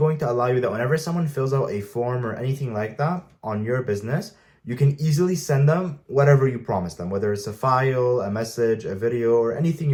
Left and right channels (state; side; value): identical; both; correlation 1.00